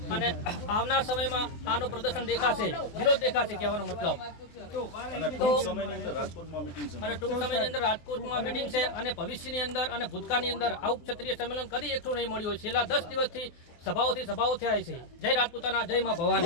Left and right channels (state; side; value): late; right; 24 ms